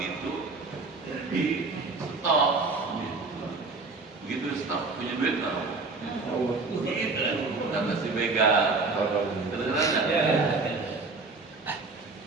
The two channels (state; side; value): quieter; left; 3.9 dB